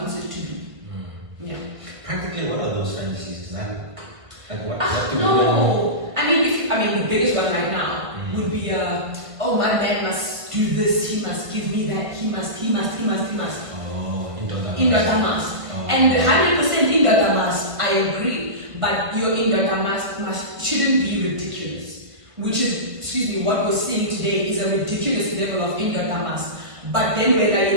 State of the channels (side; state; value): left; late; 1.5 ms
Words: it to be. Yeah. Practically, what are those fantasies? Is that like what do we no. I mean, the biggest one right now would be, oh, my man must do this, he must give me that, he must. Oh, in the Damas. Oh. And 100% in the Damas, I agree. But your in the Damas shouldn't be ridiculous. Which is, what we're seeing today is a ridiculous level of in the Damas. But then when like,